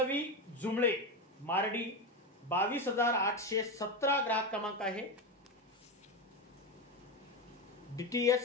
जुमळे मारडी 22,817 ग्राहक क्रमांक आहे.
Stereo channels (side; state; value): both; normal; correlation 0.16